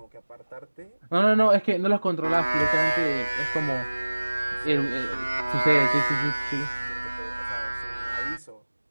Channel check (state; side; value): inverted; both; correlation -1.00